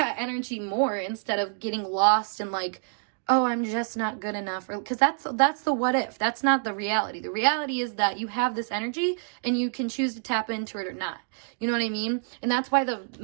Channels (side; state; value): left; silent; digital silence